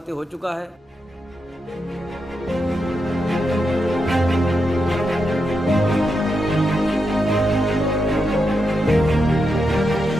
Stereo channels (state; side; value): normal; both; correlation 0.85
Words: हो चुका है।